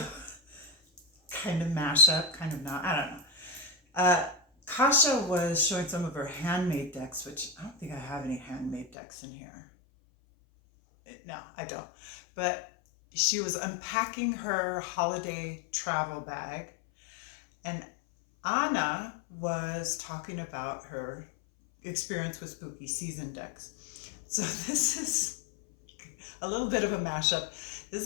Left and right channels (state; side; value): drops out; right; at 8.9 s